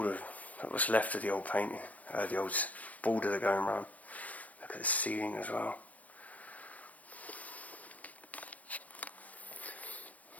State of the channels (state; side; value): late; right; 0.074 ms